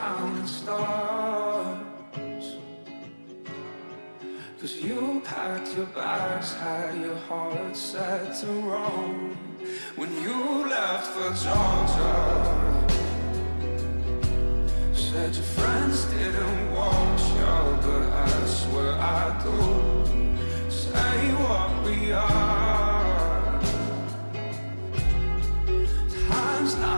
counting stars. 'Cause you packed your bags, had your heart set to roam when you left for Georgia. Said your friends didn't watch you, but I swear I do. Say what we are. Time's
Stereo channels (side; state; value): both; inverted; correlation -1.00